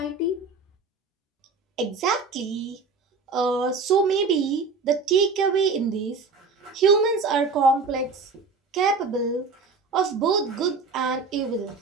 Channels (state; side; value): quieter; left; 4.3 dB